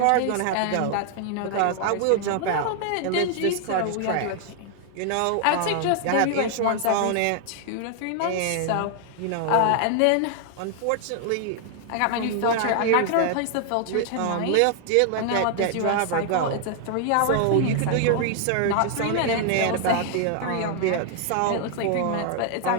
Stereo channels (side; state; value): both; different; correlation 0.00